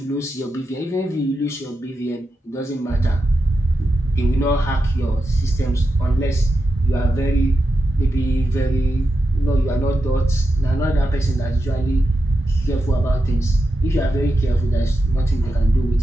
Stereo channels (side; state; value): both; normal; correlation 0.88